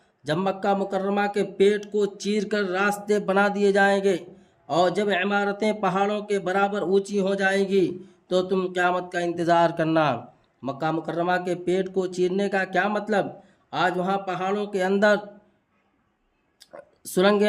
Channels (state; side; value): identical; both; correlation 1.00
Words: جب مکہ مکرمہ کے پیٹ کو چیر کر راستے بنا دیے جائیں گے اور جب عمارتیں پہاڑوں کے برابر اونچی ہو جائیں گی تو تم قیامت کا انتظار کرنا۔ مکہ مکرمہ کے پیٹ کو چیرنے کا کیا مطلب؟ آج وہاں پہاڑوں کے اندر